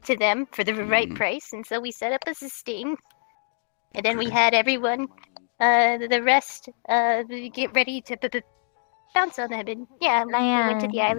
to them for the right price. And so we set up as a Sting. And then we had everyone, the rest, get ready to bounce on them. And yeah, we went to the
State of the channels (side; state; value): right; silent; digital silence